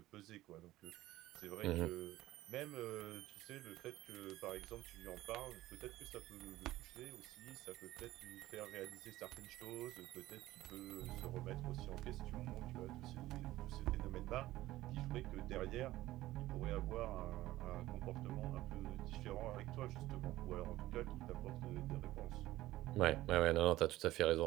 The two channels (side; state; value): left; quieter; 16.0 dB